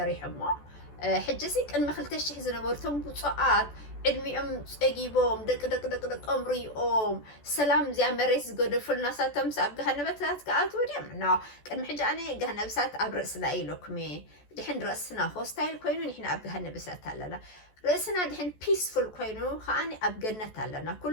ما حجسيك إن ما خلتش زنبرتهم بصعات علمي أجيبهم دك أمري سلام زي مريس جود فل ناساتهم سأب جهنم بتات كأت وديم نو كان محج أنا جهنم بسات أبرس لايلوكمي دحين رأسنا هوستايل كوينو نحن أبجهنا بسات لنا رأسنا دحين peaceful كوينو خاني أبجنة لنا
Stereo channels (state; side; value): late; right; 14 ms